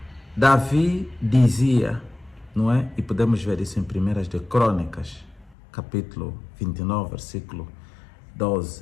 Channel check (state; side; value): drops out; right; at 5.6 s